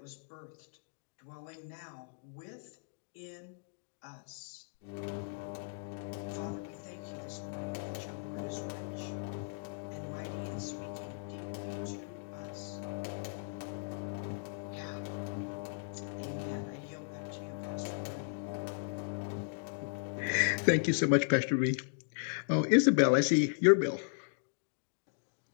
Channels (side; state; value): right; silent; digital silence